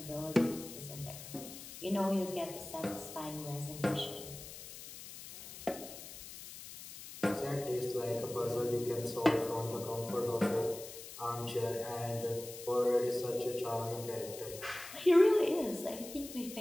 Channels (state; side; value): noise; left; hiss, 13 dB below the sound